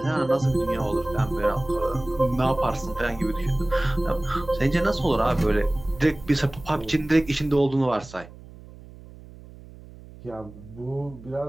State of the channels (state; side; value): noise; right; hum, 19 dB below the sound